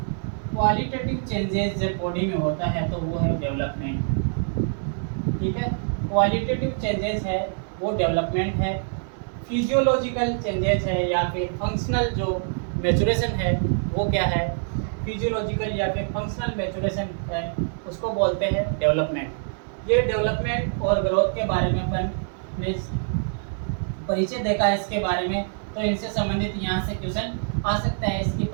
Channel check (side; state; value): left; silent; digital silence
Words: चेंजेस जब बॉडी में होता है तो वो है डेवलपमेंट। ठीक है, क्वालिटेटिव चेंजेस है वो डेवलपमेंट है। फिजियोलॉजिकल चेंजेस है या फिर फंक्शनल जो मैच्योरेशन है वो क्या है? फिजियोलॉजिकल या फिर फंक्शनल मैच्योरेशन है, उसको बोलते हैं डेवलपमेंट। ये डेवलपमेंट और ग्रोथ के बारे में अपन ने परिचय देखा है इसके बारे में। तो इनसे संबंधित यहाँ से क्वेश्चन आ सकता है, इसकी